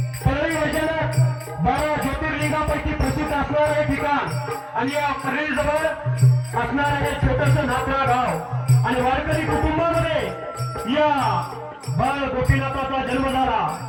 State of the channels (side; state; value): both; identical; correlation 1.00